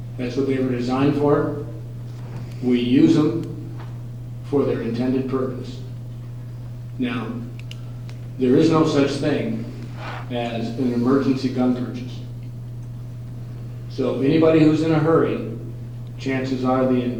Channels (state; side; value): identical; both; correlation 1.00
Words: That's what they were designed for. We use them for their intended purpose. Now, there is no such thing as an emergency gun purchase. So anybody who's in a hurry, chances are the